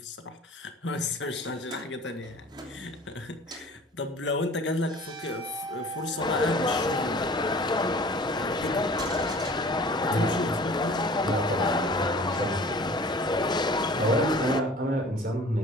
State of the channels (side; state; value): both; normal; correlation 0.46